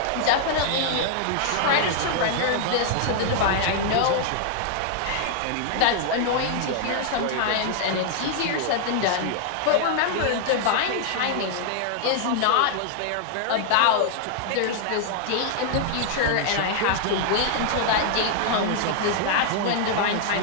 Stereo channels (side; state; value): both; different; correlation -0.01